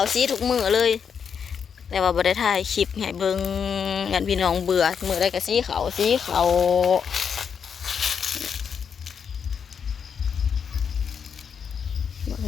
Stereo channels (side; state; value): right; quieter; 6.9 dB